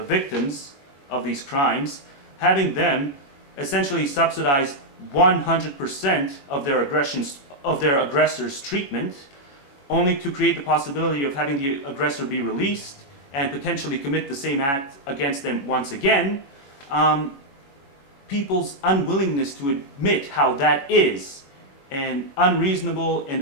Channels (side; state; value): right; late; 21 ms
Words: of these crimes, having them essentially subsidize 100% of their aggressors' treatment, only to create the possibility of having the aggressor be released and potentially commit the same act against them once again, people's unwillingness to admit how that is an unreasonable and